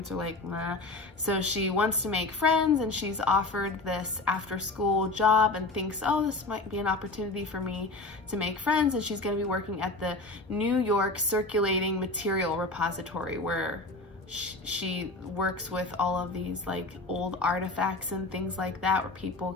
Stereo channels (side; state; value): right; quieter; 3.1 dB